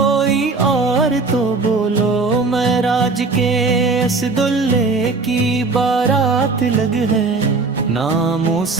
اور تو بولو، معراج کے اسدلے کی بارات لگ ہے۔ ناموں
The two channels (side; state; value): left; quieter; 4.0 dB